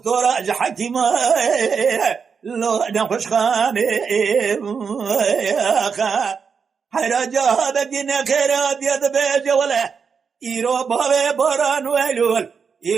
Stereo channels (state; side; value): quieter; left; 6.0 dB